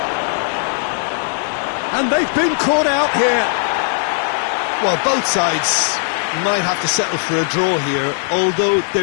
And they've been caught out here. Well, both sides might have to settle for a draw here, although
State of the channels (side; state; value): right; silent; digital silence